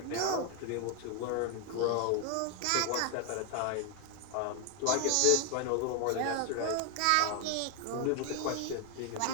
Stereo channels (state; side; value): different; both; correlation 0.00